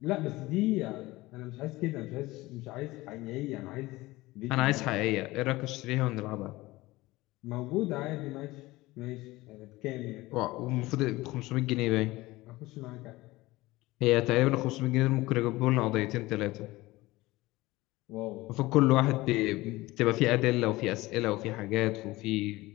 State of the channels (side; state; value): right; quieter; 19.6 dB